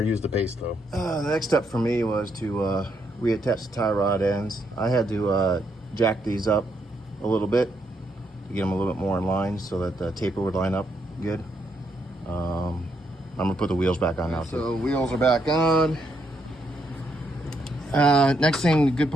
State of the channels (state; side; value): normal; both; correlation 0.77